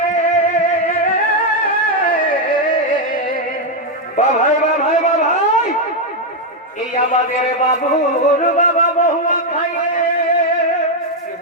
ভাই ভাই ভাই এই আমাদের বাবুর বাবা বহুয়া খাইয়ে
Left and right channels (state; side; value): normal; both; correlation 0.02